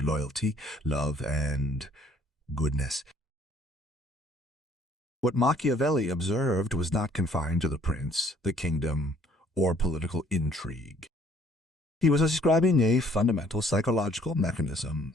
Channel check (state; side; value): normal; both; correlation 0.60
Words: loyalty, love, and goodness. What Machiavelli observed was not confined to the prince, the kingdom, or political intrigue. He was describing a fundamental psychological mechanism,